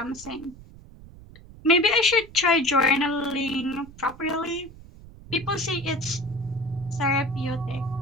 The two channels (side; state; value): right; noise; rumble, 19 dB below the sound